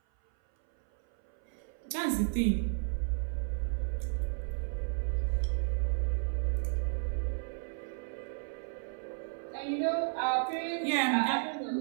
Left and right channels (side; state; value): left; silent; 56 dB below the other